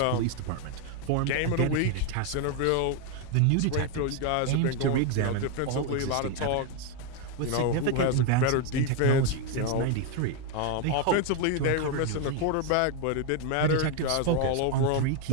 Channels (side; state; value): both; different; correlation 0.01